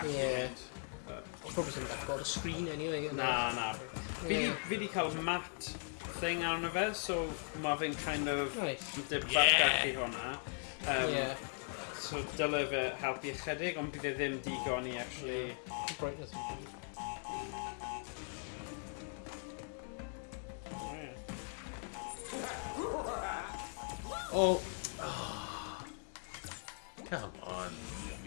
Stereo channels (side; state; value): right; silent; 52 dB below the other